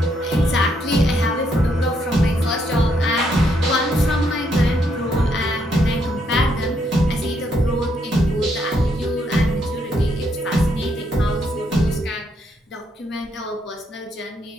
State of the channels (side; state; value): both; normal; correlation 0.75